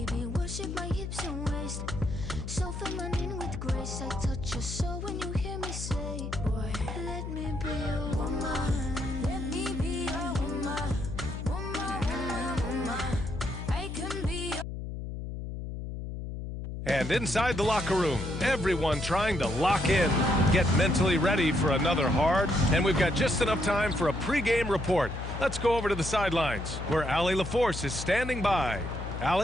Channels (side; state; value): left; noise; hum, 6 dB below the sound